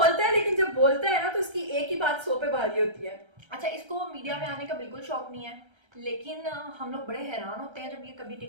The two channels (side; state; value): left; late; 1.3 ms